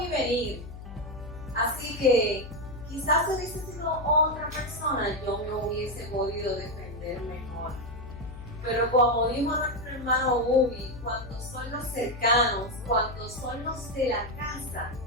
venir. Así que quizás si hubiese sido otra persona, yo me hubiese podido defender mejor. Pero como dijo nuestro hermano Bubi, cuando son los cercanos, cuando son los de la casa,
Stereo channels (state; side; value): noise; left; hum, 13 dB below the sound